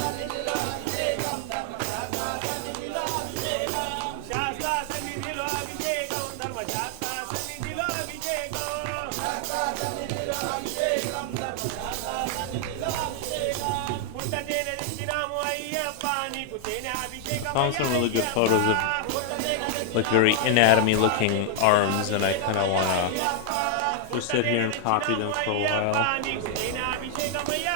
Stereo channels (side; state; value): both; different; correlation 0.00